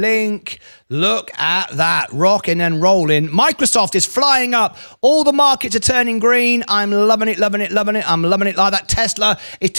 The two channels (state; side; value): inverted; both; correlation -1.00